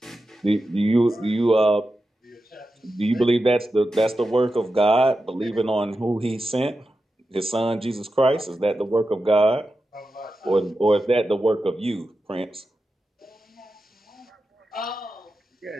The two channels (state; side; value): normal; both; correlation 0.91